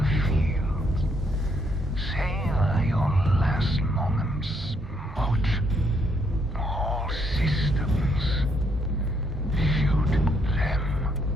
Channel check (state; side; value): normal; both; correlation 0.72